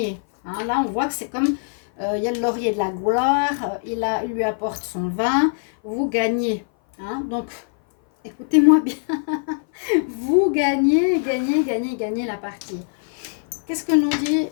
Hein, là, on voit que c'est comme... il y a le laurier de la gloire. Il lui apporte son vin. Vous gagnez. Hein, donc, écoutez-moi bien. Vous gagnez la partie. Qu'est-ce que nous dit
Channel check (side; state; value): right; silent; 57 dB below the other